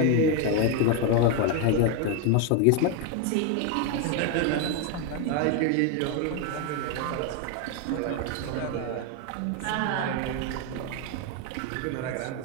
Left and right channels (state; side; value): different; both; correlation 0.02